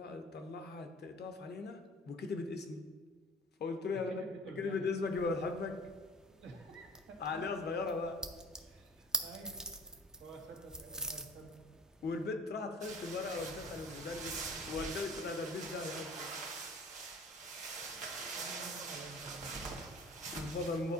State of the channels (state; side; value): normal; both; correlation 0.44